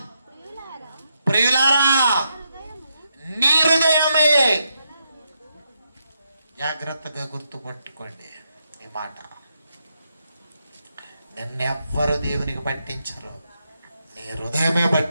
ప్రియులారా, నీ హృదయమే, జాగ్రత్తగా గుర్తుపట్టుకోండి ఈ మాట, నిన్నెవ్వరు దేవునికి పట్టించరు, నీ హృదయమే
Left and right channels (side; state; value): both; inverted; correlation -0.81